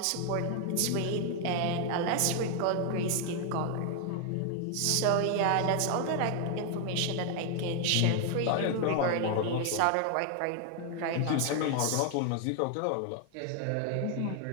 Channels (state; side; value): different; both; correlation 0.00